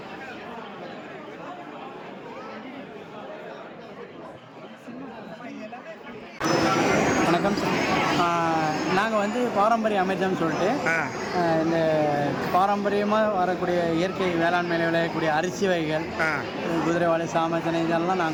வணக்கம் சார். நாங்கள் வந்து பாரம்பரிய அமைச்சம்னு சொல்லிட்டு இந்த பாரம்பரியமாக வரக்கூடிய இயற்கை வேளாண்மையில் விளையக்கூடிய அரிசி வகைகள், குதிரைவாளி, சாமத்தினை இதெல்லாம்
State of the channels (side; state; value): both; identical; correlation 1.00